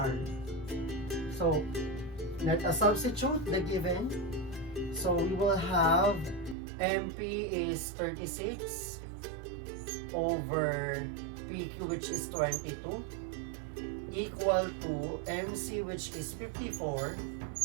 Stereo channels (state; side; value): drops out; left; at 6.6 s